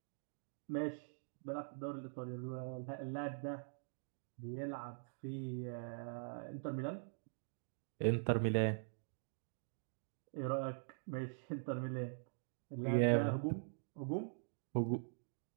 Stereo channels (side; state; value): left; silent; digital silence